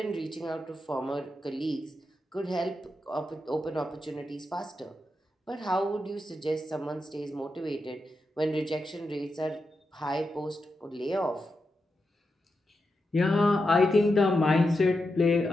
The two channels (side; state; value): both; normal; correlation 0.87